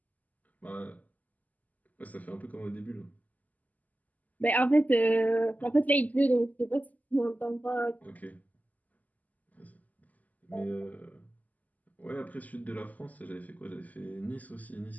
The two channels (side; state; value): right; late; 0.079 ms